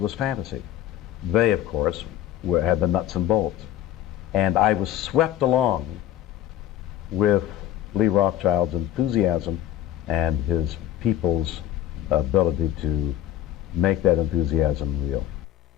fantasy. They, of course, had the nuts and bolts. And I was swept along with Lee Rothschild's enthusiasm and his people's ability to make that enthusiasm real.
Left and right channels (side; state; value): right; quieter; 12.3 dB